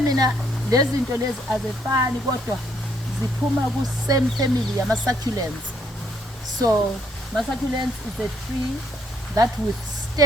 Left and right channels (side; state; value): both; normal; correlation 0.69